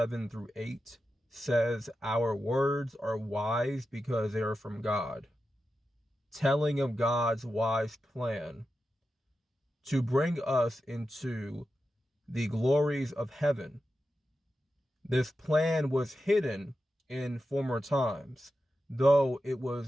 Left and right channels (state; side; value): normal; both; correlation 0.90